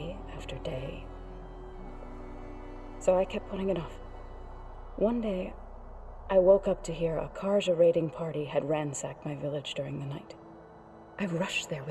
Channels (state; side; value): identical; both; correlation 1.00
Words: after day. So I kept putting it off. One day, I woke up to hear a Karja raiding party had ransacked my village during the night. I rushed there